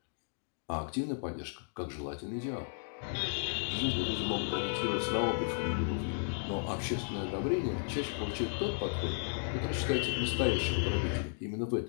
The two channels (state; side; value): silent; right; digital silence